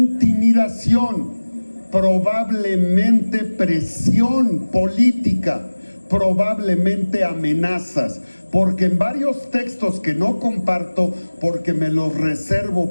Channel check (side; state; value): both; inverted; correlation -1.00